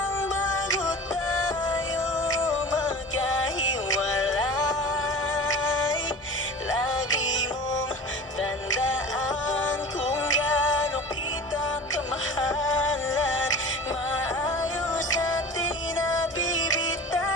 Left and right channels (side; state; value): both; normal; correlation 0.37